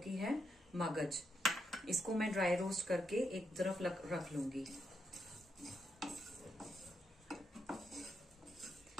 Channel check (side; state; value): both; normal; correlation 0.80